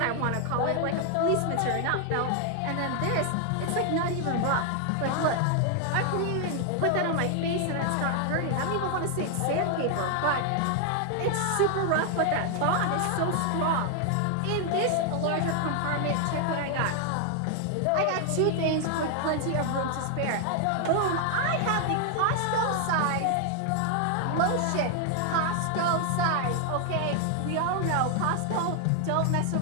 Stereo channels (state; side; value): different; both; correlation 0.00